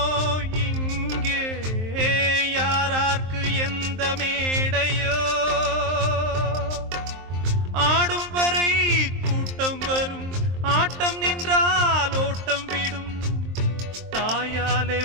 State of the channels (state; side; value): late; left; 23 ms